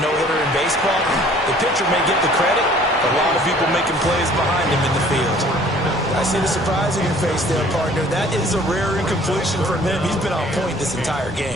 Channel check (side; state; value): both; normal; correlation 0.54